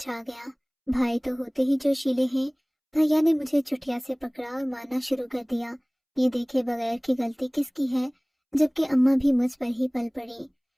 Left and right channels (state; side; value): identical; both; correlation 1.00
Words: गया। भाई तो होते ही जोशीले हैं। भैया ने मुझे चुटिया से पकड़ा और मारना शुरू कर दिया। ये देखे बगैर की गलती किसकी है, जबकि अम्मा भी मुझ पर ही पल पड़ी,